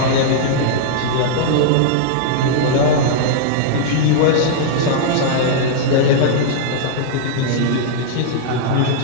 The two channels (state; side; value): different; both; correlation -0.01